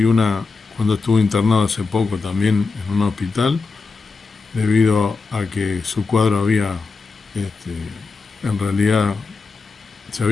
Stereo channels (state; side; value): quieter; right; 4.3 dB